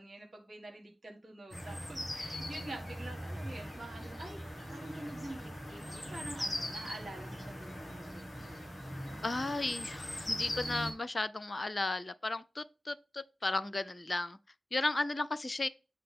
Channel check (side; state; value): both; normal; correlation 0.95